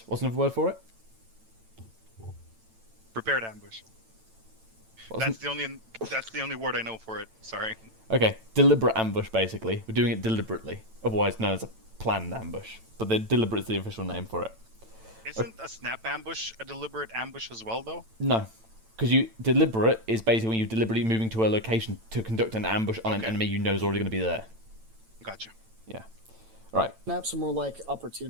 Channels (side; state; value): left; late; 9.0 ms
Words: What's another word for it? Prepared ambush. What's That's the only word I know for it. Sorry. Okay, deliberate ambush, basically. We're doing it deliberately, otherwise known as a planned ambush. But the deliberate is the official name for it. Isn't a snap ambush a deliberate ambush as well, though? No, because deliberate is basically when you're deliberately moving to a location to conduct an ambush on an enemy you know is already going to be there. Gotcha. Yeah. Right. Snaps are more like